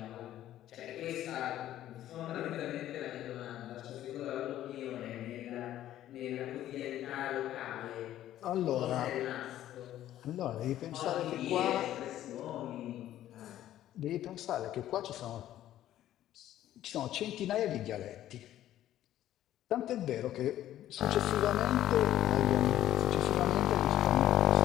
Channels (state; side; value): quieter; right; 12.8 dB